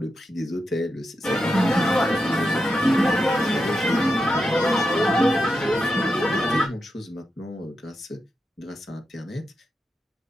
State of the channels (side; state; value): both; normal; correlation 0.87